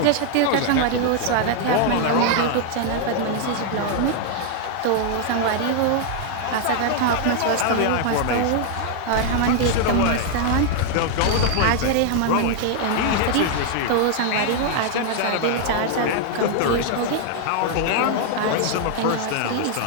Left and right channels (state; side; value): different; both; correlation 0.00